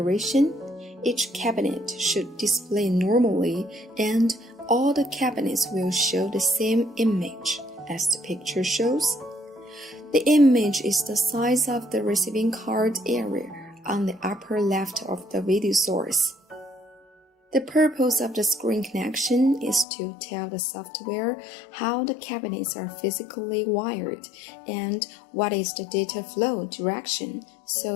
each cabinet should display normally and all the cabinets will show the same image as the picture shows. The image is the size of the receiving card area on the upper left of the video source. The purpose of the screen connection is to tell the software how the cabinets are physically wired and what is the data flow direction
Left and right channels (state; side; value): drops out; right; at 19.9 s